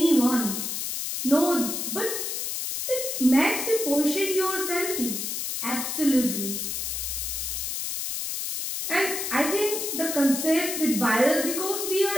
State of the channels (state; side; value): noise; left; hiss, 3 dB below the sound